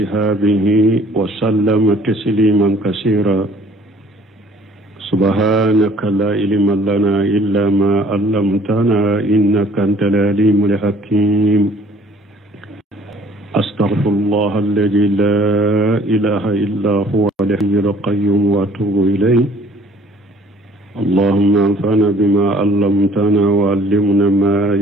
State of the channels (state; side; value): normal; both; correlation 0.55